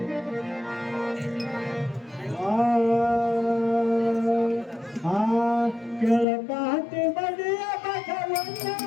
ಕೆಳಕಾತಿ ಬಡಿಯ ಬಸವಣ್ಣ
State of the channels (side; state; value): right; drops out; at 6.2 s